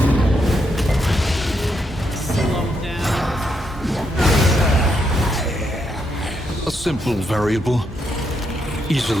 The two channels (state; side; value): normal; both; correlation 0.79